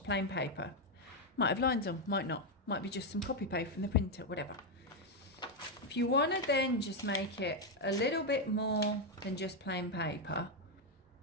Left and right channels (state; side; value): normal; both; correlation 0.03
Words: plain paper. Might have lines on, might not. Might be just some copy paste from the printer, whatever. If you want to then just make it a little bit more than just plain paper,